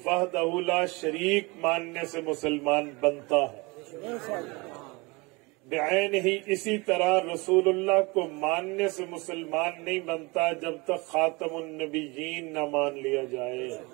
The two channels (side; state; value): left; quieter; 26.2 dB